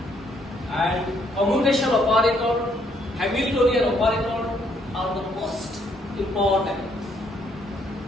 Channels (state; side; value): normal; both; correlation 0.70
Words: and commutation operator, Hamiltonian operator are the most important.